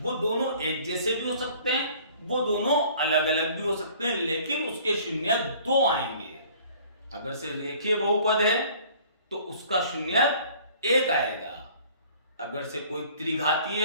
वो दोनों एक जैसे भी हो सकते हैं, वो दोनों अलग अलग भी हो सकते हैं, लेकिन उसके शून्यक 2 आएंगे। अगर से रेखीय बहुपद है तो उसका शून्यक 1 आएगा। अगर से कोई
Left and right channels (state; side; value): inverted; both; correlation -0.52